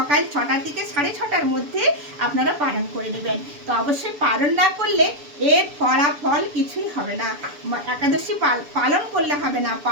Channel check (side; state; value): left; late; 6.9 ms